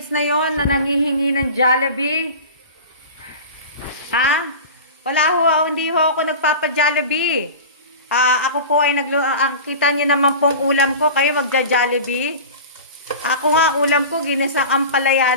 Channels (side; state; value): both; inverted; correlation -0.33